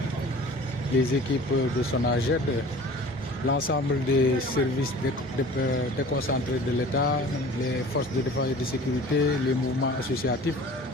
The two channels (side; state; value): both; normal; correlation 0.44